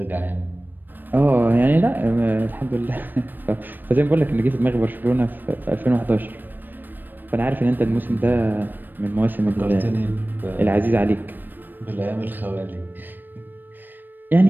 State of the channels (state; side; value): late; left; 0.092 ms